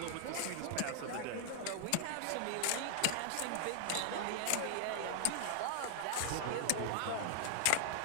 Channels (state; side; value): different; both; correlation 0.00